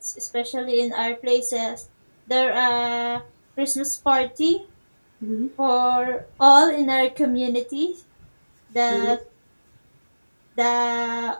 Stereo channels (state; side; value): inverted; both; correlation -1.00